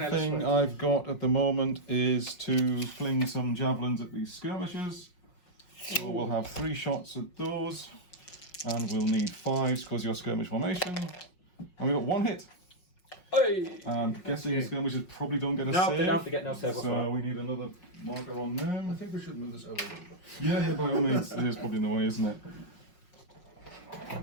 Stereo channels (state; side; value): late; right; 5.5 ms